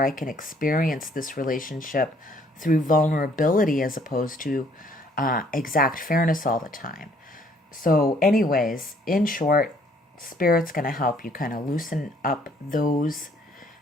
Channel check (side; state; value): both; normal; correlation 0.63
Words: I can experience this relationship through vulnerability as opposed to exact fairness all the time. So anyways, in short, Spirit's going to help you kind of loosen up those